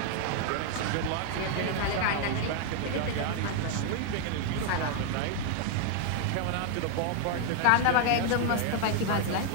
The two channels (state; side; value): different; both; correlation 0.00